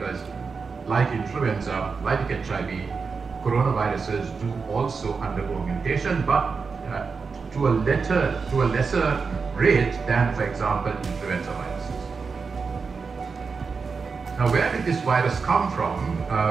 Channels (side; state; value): left; quieter; 5.0 dB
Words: like influenza, like HIV, coronaviruses do also undergo mutation, but to a lesser rate than, for example, influenza viruses. Now, where did this virus come from?